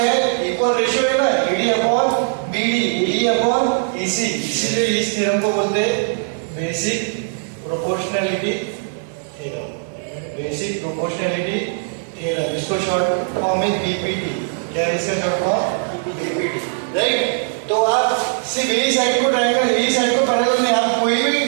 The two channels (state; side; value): silent; left; 64 dB below the other